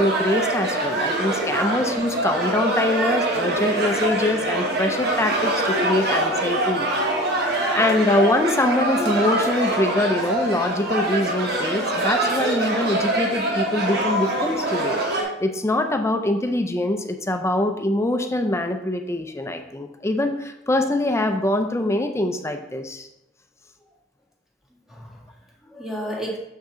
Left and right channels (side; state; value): both; normal; correlation 0.44